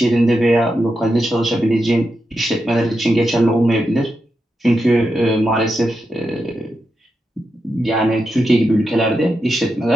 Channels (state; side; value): normal; both; correlation 0.87